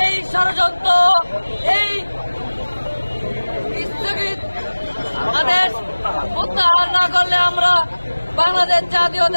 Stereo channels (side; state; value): both; inverted; correlation -1.00